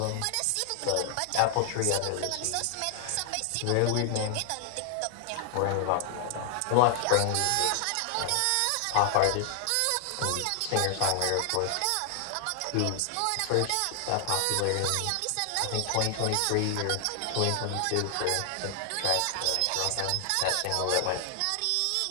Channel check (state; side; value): different; both; correlation 0.00